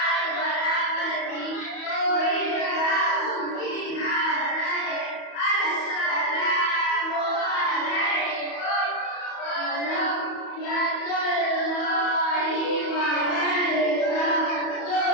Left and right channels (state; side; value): late; right; 31 ms